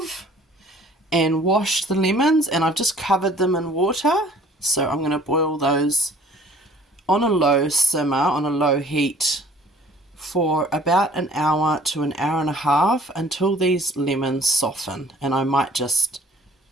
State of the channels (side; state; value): both; normal; correlation 0.53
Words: and washed the lemons, and I've just covered them in water. So I'm going to boil those on a low simmer, on a low heat, for about an hour to an hour and a half until these lemons soften. And I might just